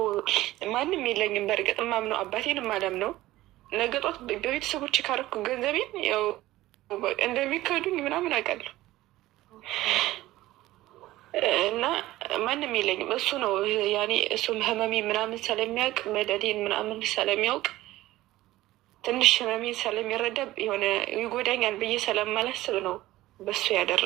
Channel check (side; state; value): left; quieter; 16.5 dB